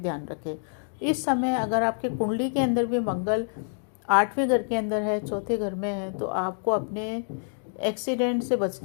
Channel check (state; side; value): silent; right; digital silence